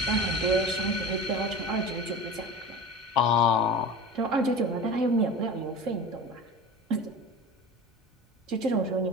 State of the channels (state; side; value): normal; both; correlation 0.33